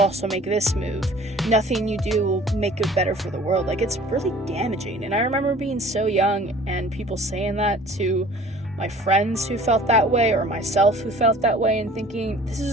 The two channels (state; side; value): normal; both; correlation 0.49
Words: make this move, nothing you do will make it better for the world, like, it's really damaging. And I remember being so young and people saying that to my friends who felt that way, or myself who felt that way, and thinking, this